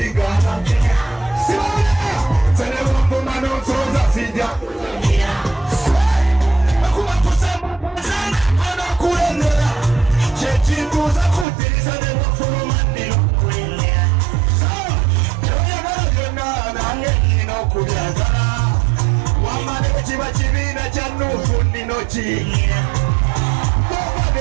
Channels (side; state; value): left; drops out; at 11.5 s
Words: Tene wangu manotoza sija. Akuma kusema sana ana kulendera. Chechinguza kutirisa de wafuno mandilo kulendera. So, joya gana nange ino kubyazana. Wamane chiba chibina chanu fundi nochi. Baba